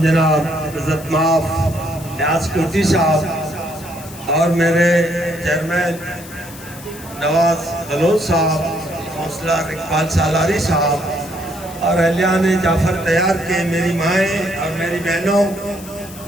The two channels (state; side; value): noise; left; hiss, 17 dB below the sound